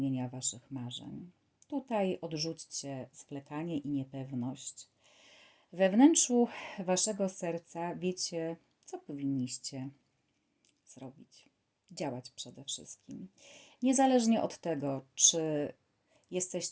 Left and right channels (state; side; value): identical; both; correlation 1.00